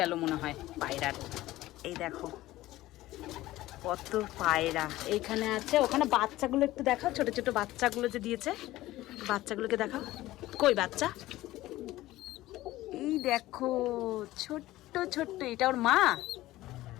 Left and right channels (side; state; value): right; quieter; 16.5 dB